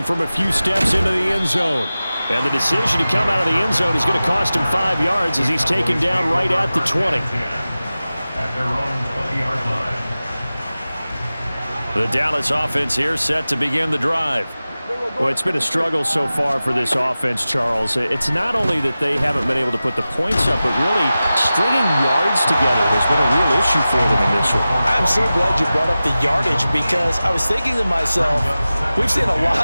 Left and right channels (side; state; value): both; inverted; correlation -0.95